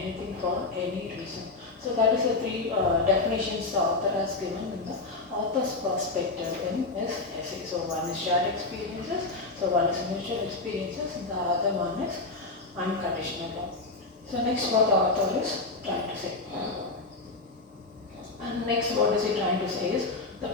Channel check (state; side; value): quieter; right; 3.5 dB